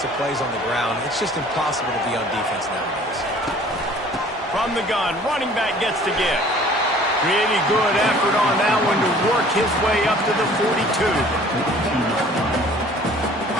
of plays on the ground. It's just impossible to be on defense nowadays. From the gun, running back gets to give. Really good effort on that one to work his way up to the 42.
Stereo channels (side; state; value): both; normal; correlation 0.51